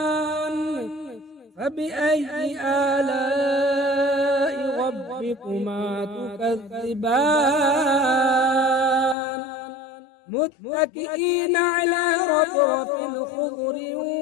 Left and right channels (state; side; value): drops out; right; at 9.2 s